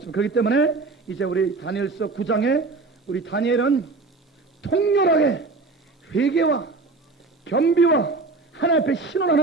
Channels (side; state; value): left; quieter; 3.8 dB